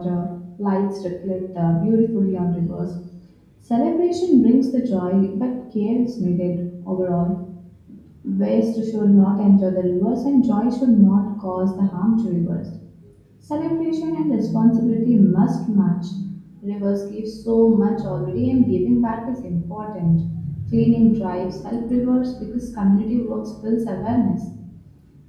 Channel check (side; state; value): both; identical; correlation 1.00